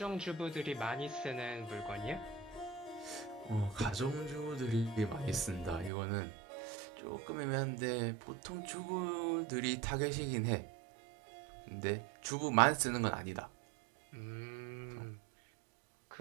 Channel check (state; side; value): drops out; left; at 5.9 s